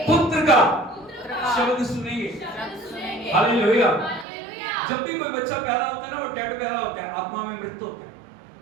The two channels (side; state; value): left; drops out; at 4.2 s